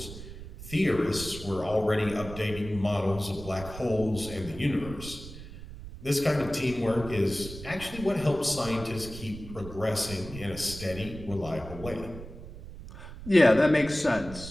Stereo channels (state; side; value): noise; right; rumble, 13 dB below the sound